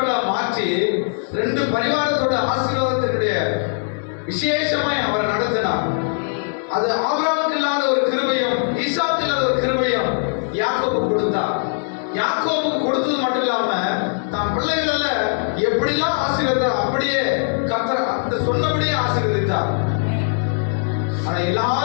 மாற்றி 2 பரிவாரத்தோட ஆசீர்வாதத்தினுடைய விசேஷமாய் அவரை நடத்தினார். அது ஆபிரகாமுக்கு இல்லாத ஒரு கிருபையும் ஈசாக்கு இல்லாத ஒரு கிருபையும் யாக்கோபு கொடுத்தார். யாக்கோபு கொடுத்தது மட்டும் இல்லாம தன் பிள்ளைகள எப்படிலாம் ஆசீர்வதித்தார் அப்படியே கர்த்தர் அந்த சொன்னபடியே ஆசீர்வதித்தார். ஆனா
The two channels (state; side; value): silent; right; digital silence